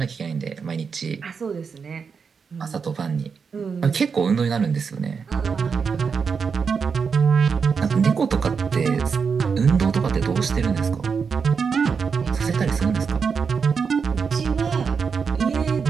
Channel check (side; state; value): left; quieter; 5.8 dB